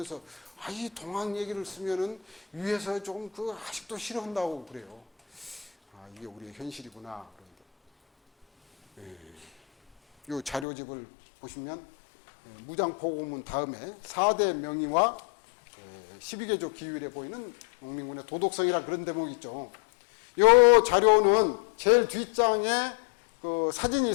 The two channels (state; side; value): drops out; right; at 10.7 s